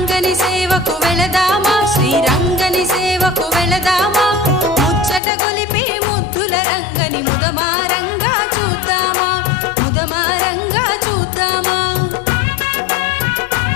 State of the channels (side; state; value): right; drops out; at 5.2 s